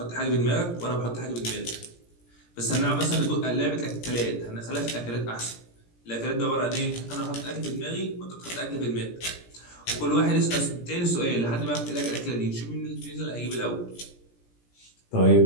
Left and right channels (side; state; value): right; late; 17 ms